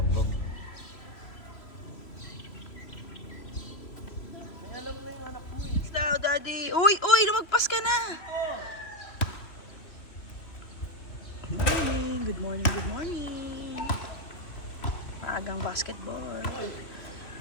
Now, Daddy! Uy! Uy! Lumagpas ka na! Good morning! Good morning! Good morning! Maagang basketball.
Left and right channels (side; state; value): right; late; 3.1 ms